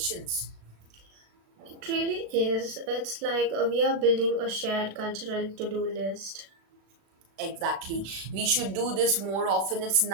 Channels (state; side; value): late; left; 36 ms